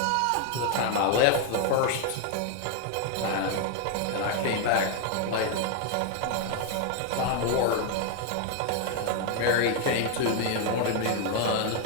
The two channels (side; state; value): both; different; correlation 0.00